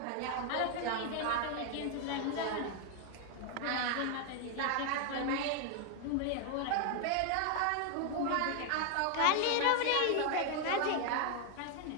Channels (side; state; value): both; different; correlation 0.00